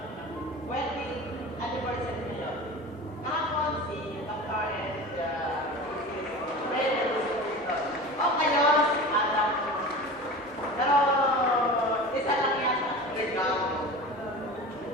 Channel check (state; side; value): normal; both; correlation 0.34